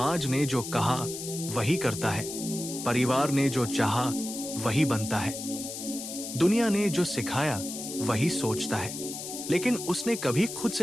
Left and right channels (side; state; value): left; noise; hiss, 8 dB below the sound